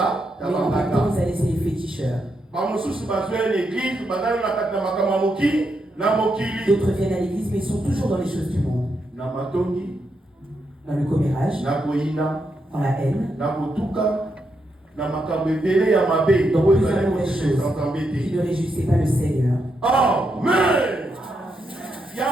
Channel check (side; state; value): both; normal; correlation 0.82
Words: même temps, ils allaient chez les féticheurs. D'autres viennent à l'église, mais ils sont toujours dans les choses du monde. Dans le commérage, dans la haine, dans plusieurs mauvaises choses qui ne réjouissaient pas le Seigneur. Amen.